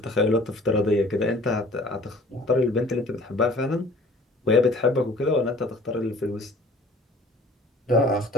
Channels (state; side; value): normal; both; correlation 0.51